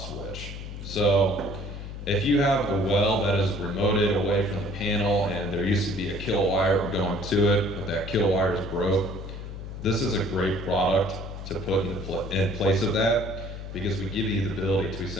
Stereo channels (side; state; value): left; noise; hum, 9 dB below the sound